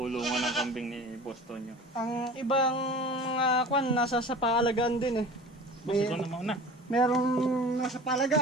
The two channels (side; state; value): both; normal; correlation 0.39